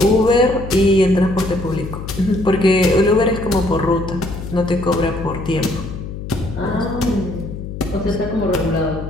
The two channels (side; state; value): left; noise; hum, 9 dB below the sound